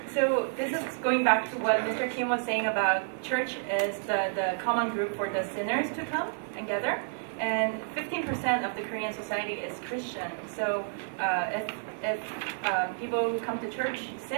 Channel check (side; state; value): left; silent; 58 dB below the other